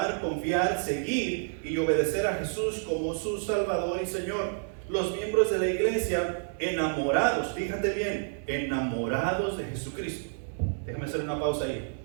confiar, seguir y obedecer a Jesús como su Salvador y Señor. Los miembros de la iglesia enamorados, fíjate bien, enamorados de Jesucristo. Déjame hacer una pausa ahí.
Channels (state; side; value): silent; left; digital silence